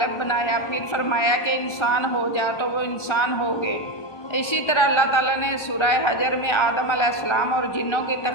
بنایا، پھر فرمایا کہ انسان ہو جا تو وہ انسان ہو گئے۔ اسی طرح اللہ تعالیٰ نے سورہ حجر میں آدم علیہ السلام اور جنوں کی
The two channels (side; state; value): right; late; 1.3 ms